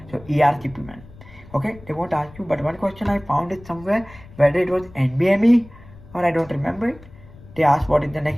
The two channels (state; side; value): noise; left; rumble, 21 dB below the sound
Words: So ERCP man. Okay, they won't ask you. But one question I found it somewhere, whether it was NBME or I don't remember it. They asked what is the